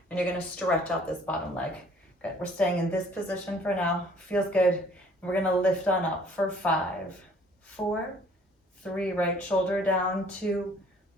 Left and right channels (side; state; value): both; normal; correlation 0.57